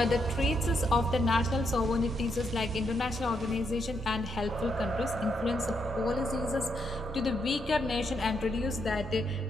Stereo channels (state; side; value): normal; both; correlation 0.79